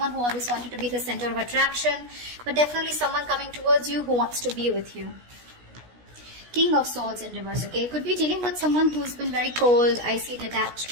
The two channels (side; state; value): left; late; 16 ms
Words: who always wanted to be the center of attraction, but definitely someone coming towards you who wants to be with you. King of Swords in reverse, okay? Could be dealing with someone who's been very cold, icy, detached